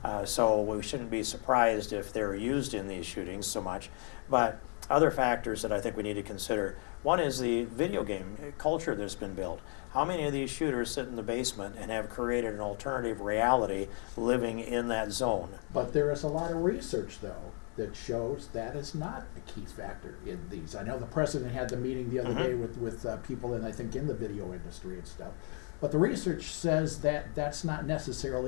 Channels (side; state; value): right; quieter; 40.0 dB